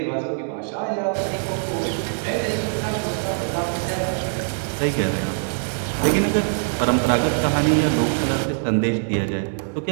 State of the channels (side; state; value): left; silent; 64 dB below the other